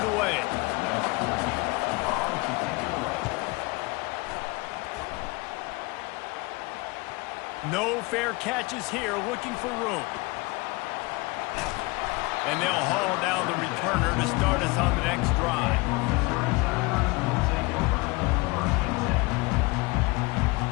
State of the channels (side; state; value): right; quieter; 24.8 dB